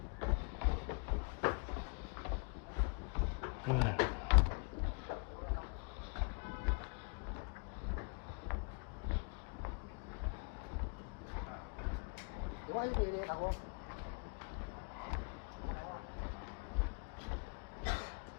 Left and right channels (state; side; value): quieter; right; 35.7 dB